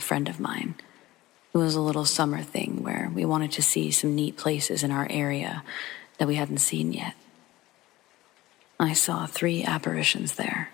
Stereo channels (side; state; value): right; quieter; 17.4 dB